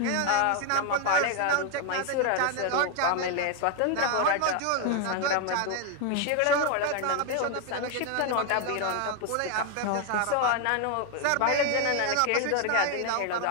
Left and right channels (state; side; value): different; both; correlation 0.01